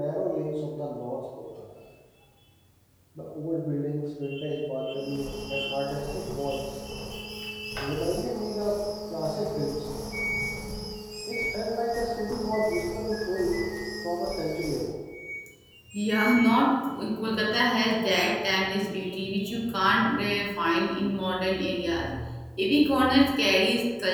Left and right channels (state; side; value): identical; both; correlation 1.00